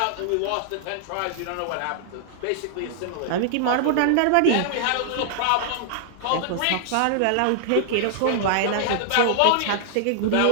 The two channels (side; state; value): both; different; correlation -0.01